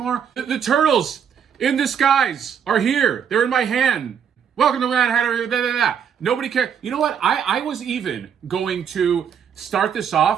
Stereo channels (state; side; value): quieter; left; 7.8 dB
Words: The turtles in disguise are here. They're in my hand. Welcome to Mad Hatter. Nobody cares. You know what? I was even going to start this